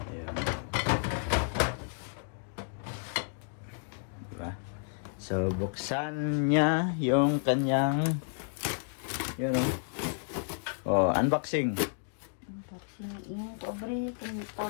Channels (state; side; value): silent; right; digital silence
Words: Ayan. Diba? So, buksan niya yung kanyang, yun o. Oh, unboxing. Yung pobre, kung